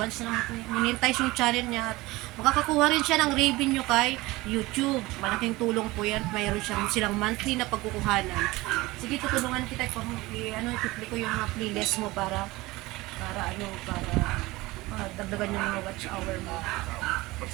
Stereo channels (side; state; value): left; quieter; 20.4 dB